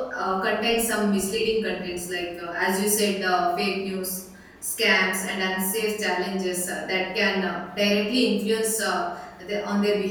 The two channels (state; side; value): identical; both; correlation 1.00